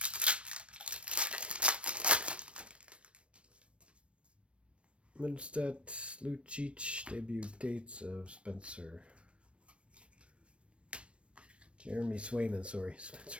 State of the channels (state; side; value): late; left; 0.060 ms